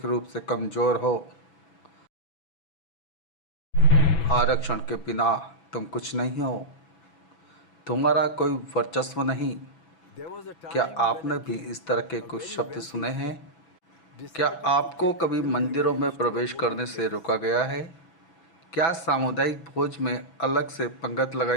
रूप से कमजोर हो। आरक्षण के बिना तुम कुछ नहीं हो, तुम्हारा कोई वर्चस्व नहीं। क्या आपने भी इस तरह के कुछ शब्द सुने हैं? क्या आपको कभी मंदिरों में प्रवेश करने से रोका गया है? क्या सामुदायिक भोज में अलग से पंगत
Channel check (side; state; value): right; late; 6.0 ms